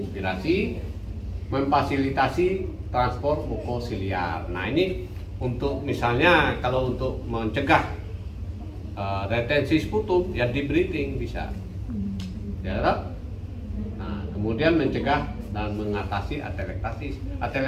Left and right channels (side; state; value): both; identical; correlation 1.00